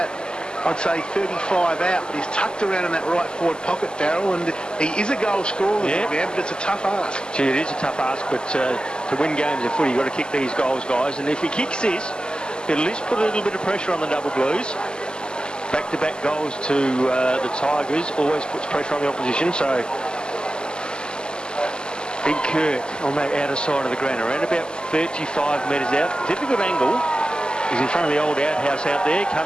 I'd say, 35 out, but he's tucked around in that right forward pocket, Darryl, and he is a goal scorer, man, but it's a tough ask. Gee, it is a tough ask, but to win games of footy, you've got to kick these goals, guys, and if he kicks this, it'll at least put a little bit of pressure on the Double Blues. Back-to-back goals to the Tigers always puts pressure on the opposition, so Big Kirk on that outer side of the ground, around about 35 metres out. Difficult angle. He's in front of the old outhouse out there.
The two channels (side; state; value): right; late; 0.046 ms